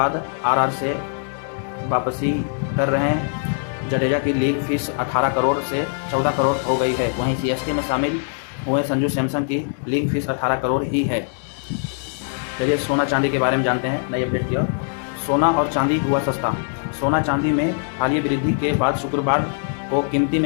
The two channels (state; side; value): silent; right; digital silence